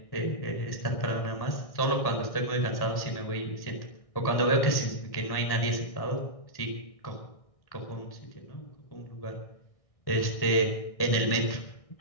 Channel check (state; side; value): late; right; 1.6 ms